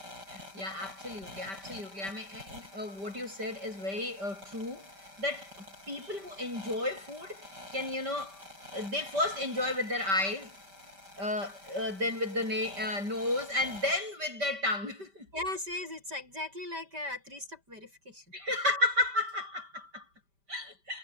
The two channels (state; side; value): late; left; 5.1 ms